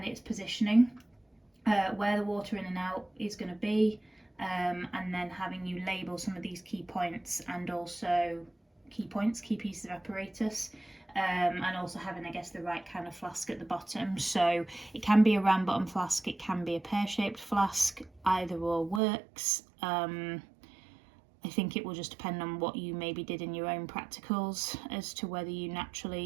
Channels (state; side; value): drops out; left; at 19.0 s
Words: its positioning, where the water in and out is going to be, and then having you label some of these key points and also key pieces of apparatus, and also having, I guess, the right kind of flask at the bottom. So it can be a round bottom flask, it can be a pear-shaped flask, either or works. I think it will just depend on what you maybe did in your own practicals as to whether you